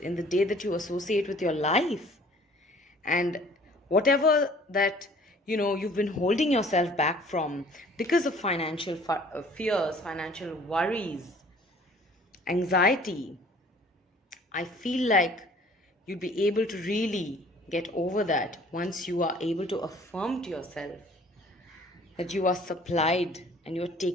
in the day that you associate with your life. And whatever that you've been holding yourself back from because of financial fears, financial worries, anxiety, I feel like you'd be able to really get over that once you are able to affirm to yourself that you are supplied and you're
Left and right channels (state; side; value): normal; both; correlation 0.53